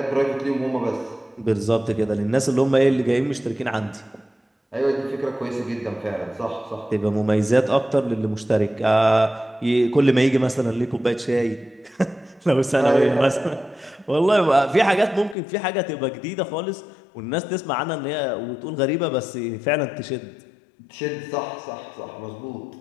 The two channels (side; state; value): right; drops out; at 15.4 s